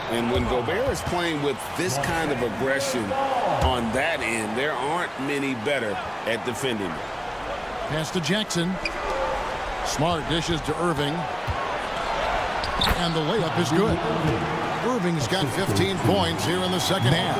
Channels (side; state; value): both; identical; correlation 1.00